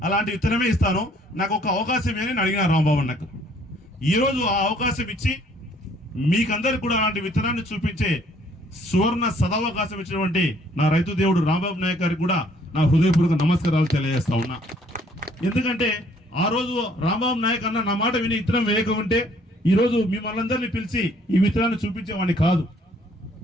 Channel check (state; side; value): normal; both; correlation 0.62